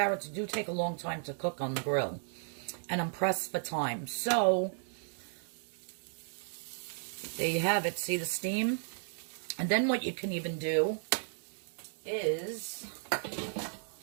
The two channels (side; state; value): left; silent; digital silence